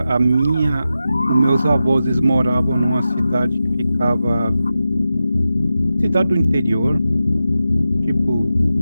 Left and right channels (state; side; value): inverted; both; correlation -0.92